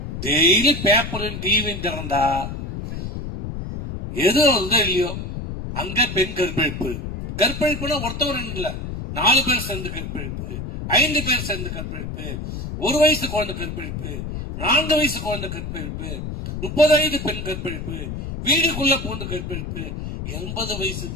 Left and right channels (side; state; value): left; noise; rumble, 6 dB below the sound